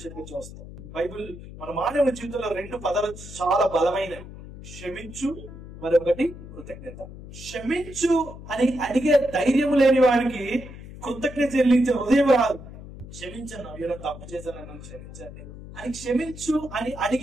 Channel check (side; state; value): left; noise; hum, 14 dB below the sound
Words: చూస్తాం. బైబిల్ మన మానవ జీవితంలో 2 పదాలు చాలా బలమైనవి: క్షమించు, మరొకటి కృతజ్ఞత. క్షమించు అని అడిగే ధైర్యం లేని వాడికి కృతజ్ఞత చెల్లించే హృదయం రాదు. క్షమించను, ఏదో తప్పు చేశాను, క్షమించండి అని క్షమించు అని